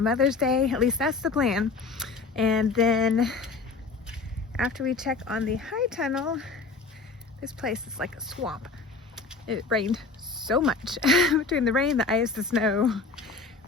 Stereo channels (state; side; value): quieter; right; 4.2 dB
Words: Day. At least that's the plan. And then after we check on the high tunnel, this place is like a swamp. It rained so much between the rain, the ice, the snow.